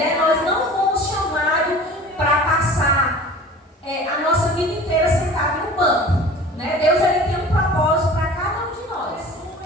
Nós não fomos chamados para passar a nossa vida inteira sentado no banco, né? Deus, Ele tem um propósito para cada um de nós,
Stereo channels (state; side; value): normal; both; correlation 0.42